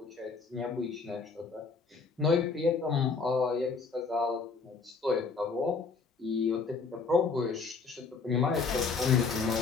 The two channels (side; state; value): right; quieter; 4.7 dB